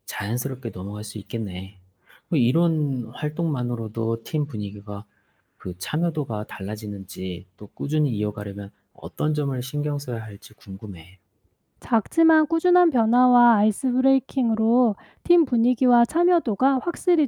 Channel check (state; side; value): identical; both; correlation 1.00